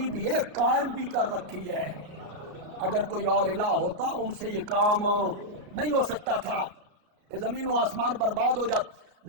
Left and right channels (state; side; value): late; left; 34 ms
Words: بھی ہے، قائم بھی کر رکھی ہے۔ اگر کوئی اور الہ ہوتا ان سے یہ کام نہیں ہو سکتا تھا، یہ زمین و آسمان برباد ہو جاتا۔